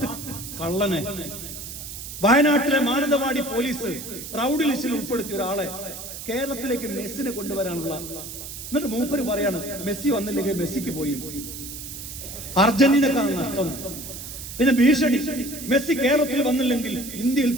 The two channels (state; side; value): noise; right; hiss, 10 dB below the sound